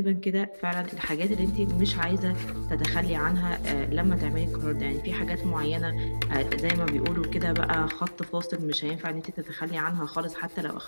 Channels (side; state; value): both; inverted; correlation -1.00